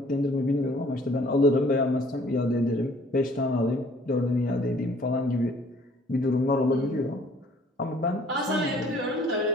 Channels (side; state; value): both; normal; correlation 0.57